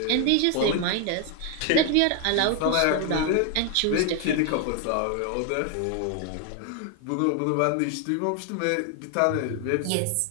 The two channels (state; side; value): different; both; correlation 0.01